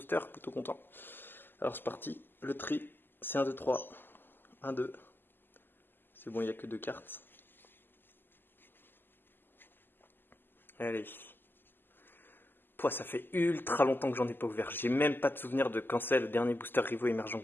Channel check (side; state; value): right; late; 0.095 ms